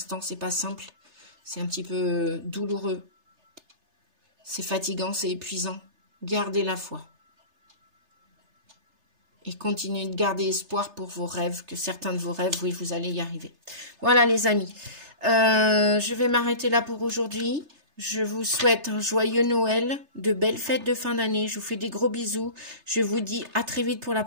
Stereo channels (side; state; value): left; late; 3.3 ms